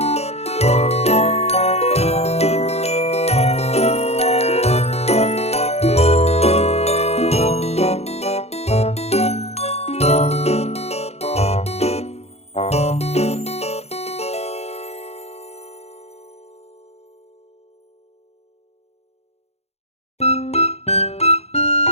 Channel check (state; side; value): late; right; 0.31 ms